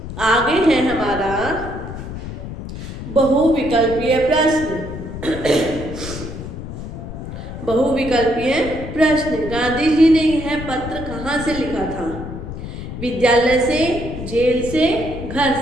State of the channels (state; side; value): noise; left; rumble, 9 dB below the sound